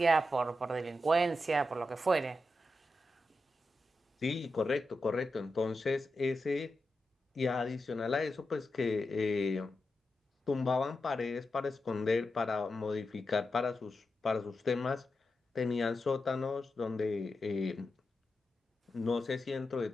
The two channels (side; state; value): both; normal; correlation 0.89